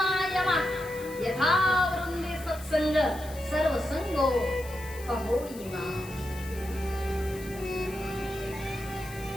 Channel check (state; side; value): noise; left; hiss, 17 dB below the sound